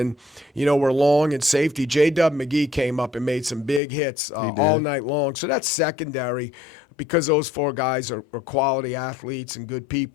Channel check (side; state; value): right; drops out; at 3.8 s